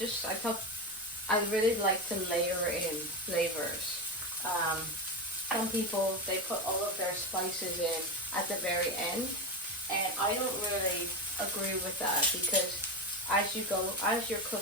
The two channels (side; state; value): left; noise; rumble, 28 dB below the sound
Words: I really like to layer in flavors. Some people, they put all of their spices in at the very end, and I don't really agree with that because as you're